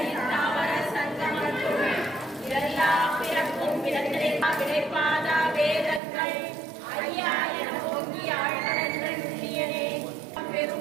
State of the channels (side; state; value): left; drops out; at 6.0 s